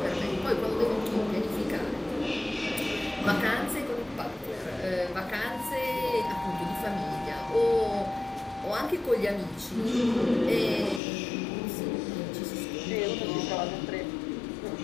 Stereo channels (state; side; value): drops out; right; at 11.0 s